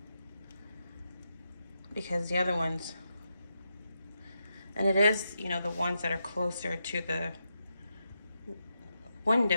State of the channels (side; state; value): both; inverted; correlation -0.85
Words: because the other ones, and it is, the ones that are closer to the